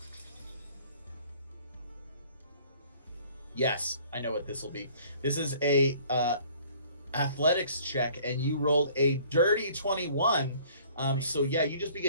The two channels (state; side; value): inverted; both; correlation -0.55